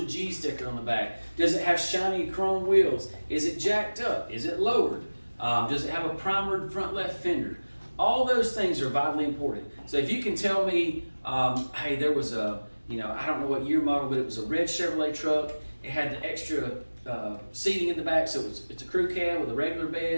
G sticker on the back? Does it have shiny chrome wheels? Is it jacked up? Is it lowered? Does it have a primered front left fender? All those things are vitally important. So if you can tell me, hey, there was I don't know what year model, but it was a red Chevrolet truck. It had the extra seating in the back, so it's a crew cab with a regular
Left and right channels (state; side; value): inverted; both; correlation -1.00